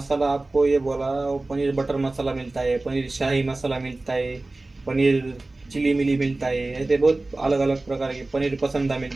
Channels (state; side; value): quieter; left; 3.0 dB